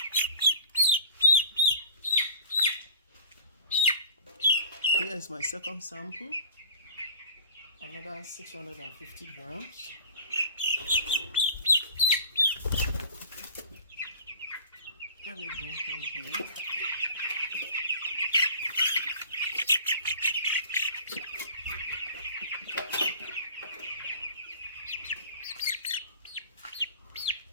Here is my second sample, another 650 grams. Let me go from here.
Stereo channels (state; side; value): inverted; both; correlation -0.42